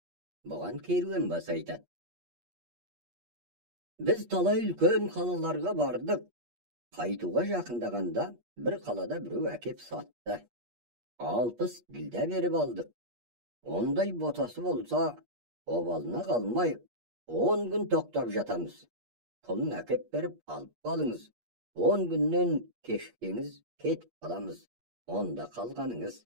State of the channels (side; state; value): left; late; 8.4 ms